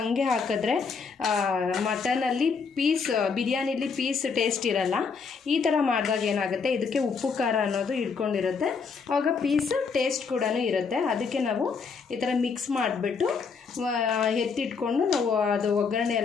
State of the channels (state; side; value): quieter; right; 5.3 dB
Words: ಹಾಕಿದ್ರೆ ಮಟನಲ್ಲಿ ಬಿರಿಯಾನಿಲಿ ಪೀಸ್ ಟೇಸ್ಟ್ ಇರಲ್ಲ. ಈ ಥರ ಮಾಡಿದಾಗ ಏನಾಗುತ್ತೆ, ಇದಕ್ಕೆ ಉಪ್ಪು ಖಾರ ಅನ್ನೋದು ಹಿಡ್ಕೊಂಡಿರುತ್ತೆ. ಆವಾಗ ಪೀಸ್ ಟೇಸ್ಟ್ ಕೂಡ ಇರುತ್ತೆ. ಅದಕ್ಕೆ ನಾವು ಈ ಥರ ಮಿಕ್ಸ್ ಮಾಡಿಬಿಟ್ಟು ಎತ್ತಿಟ್ಕೊಂಡು ನಾವು ಅದು ಒಗ್ಗರಣೆ